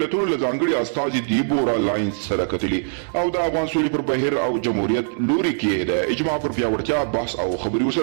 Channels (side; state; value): left; silent; 64 dB below the other